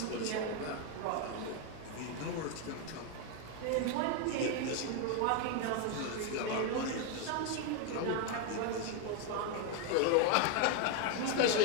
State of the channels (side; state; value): both; different; correlation 0.01